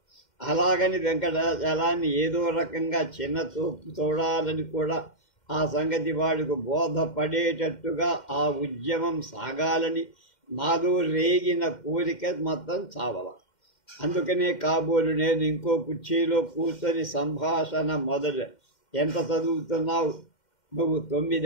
అలాగని వెంకటాచలాన్ని ఏదో రకంగా చిన్న చూపు చూడాలని కూడా ఆ సంగతి వాడికి బోధపడేటట్టుగా ఆ ఉద్యమం సాగాలని నాలో రేగిన కోరిక మొత్తం చావల. అందుకనే కాబోలు నేను ఇంకో కుర్చీలో కూర్చొని సంభాషణ మొదలు. ఎంత చదువుతున్నావు నువ్వు?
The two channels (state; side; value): late; right; 2.1 ms